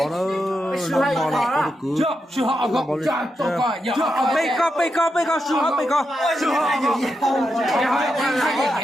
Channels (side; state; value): both; normal; correlation 0.85